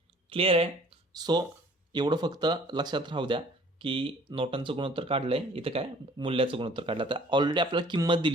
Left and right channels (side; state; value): both; normal; correlation 0.53